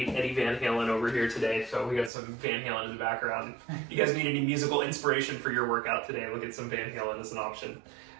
Eddie Van Halen over here today, so we got some Van Halen in the background. If you guys need any musical inspiration for your workout today, look at some Van Halen as an option.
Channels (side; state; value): left; drops out; at 2.1 s